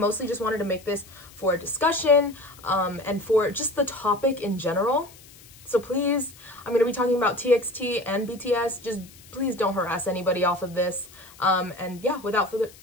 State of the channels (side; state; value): left; noise; hiss, 22 dB below the sound